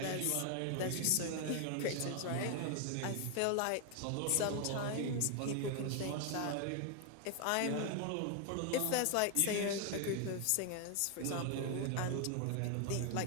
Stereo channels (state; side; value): different; both; correlation 0.00